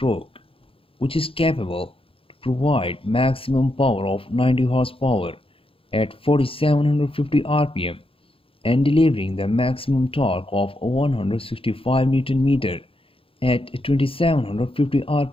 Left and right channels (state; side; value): late; right; 0.27 ms